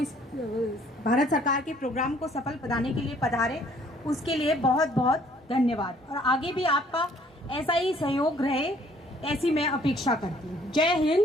भारत सरकार के प्रोग्राम को सफल बनाने के लिए पधारे, उसके लिए बहुत बहुत धन्यवाद। और आगे भी आपका ऐसा ही सहयोग रहे, ऐसी मैं अपेक्षा करती हूँ। जय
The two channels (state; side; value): normal; both; correlation 0.60